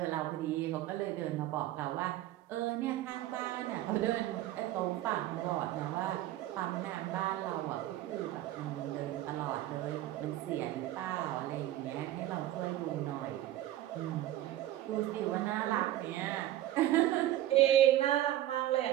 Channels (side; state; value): left; quieter; 13.9 dB